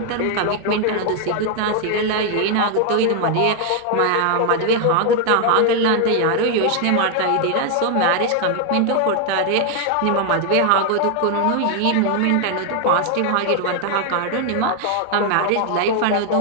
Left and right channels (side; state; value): both; different; correlation 0.00